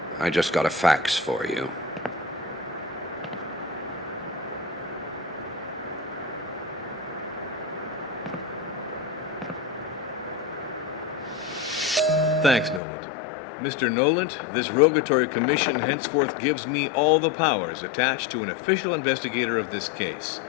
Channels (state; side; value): drops out; right; at 12.8 s